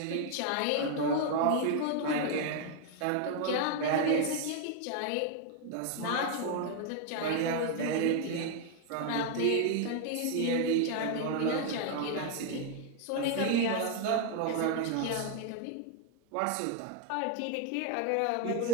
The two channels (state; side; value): different; both; correlation 0.01